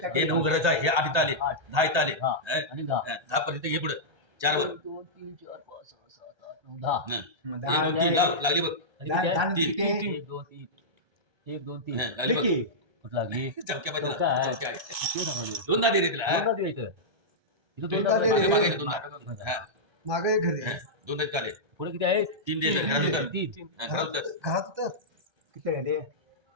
हे 9 घराचं आहे हे 8 इथं आले 10 इथं आले हा. आणि दहा 10 पर्यंत हे पुढे 4 वर एक दोन तीन चार पाच सहा सात आठ नऊ दहा 1 2 3 लागली बघ आणि किती आहे? तीन. एक दोन तीन एक दोन तीन लागली बघ कुठं लागली चौक्या पाहिजे चौका आहे. चौक्या आहे किती सांगायचं? दोन दे रे तिला दोनदा द्यायचं. इथं दोनदा दोनदा दे. मागे द्यायचं. मागे दोन हा मागे घरी दोन आहेत काले पुढे किती आहे 3 दे घरात उतर तीन घरात उतर घरात तर किती आहे रे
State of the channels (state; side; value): late; left; 1.3 ms